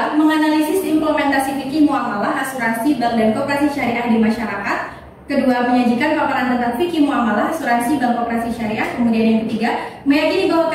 menganalisis implementasi fikih muamalah, asuransi, bank dan koperasi syariah di masyarakat. Kedua, menyajikan paparan tentang fikih muamalah, asuransi, bank, koperasi syariah. Kemudian yang ketiga, meyakini bahwa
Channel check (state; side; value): identical; both; correlation 1.00